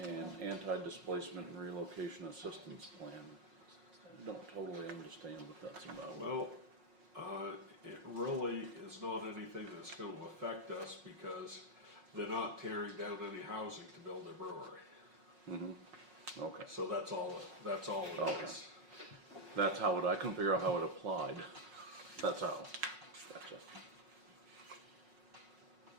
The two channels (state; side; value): late; left; 5.5 ms